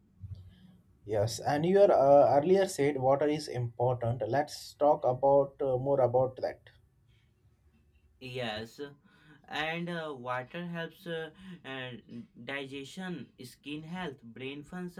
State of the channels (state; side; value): identical; both; correlation 1.00